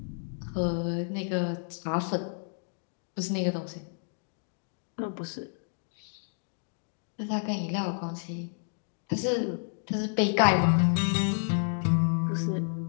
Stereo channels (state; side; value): silent; right; digital silence